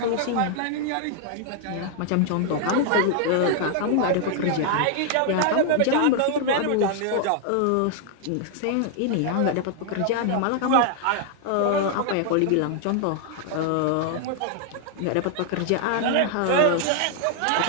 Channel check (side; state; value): both; different; correlation 0.00